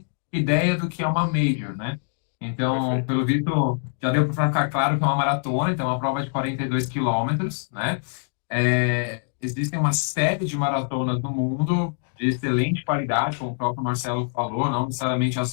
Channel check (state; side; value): silent; right; digital silence